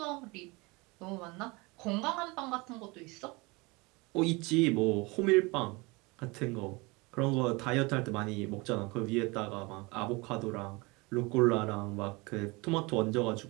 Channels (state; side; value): quieter; left; 25.5 dB